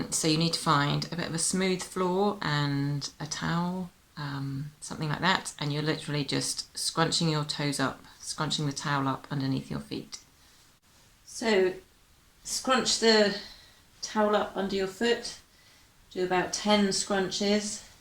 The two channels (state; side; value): identical; both; correlation 1.00